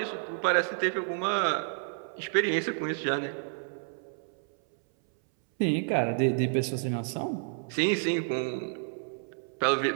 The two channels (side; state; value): left; silent; 58 dB below the other